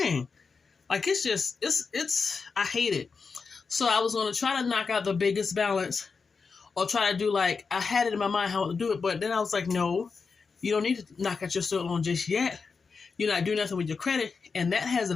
Like, it's just, I hate it. So I was going to try to knock out the biggest balance or try to do like, I had it in my mind how to do it. But then I was like, no, you don't need to knock out your student loan just yet. You're not doing nothing with your credit. And that has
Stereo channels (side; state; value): right; quieter; 5.0 dB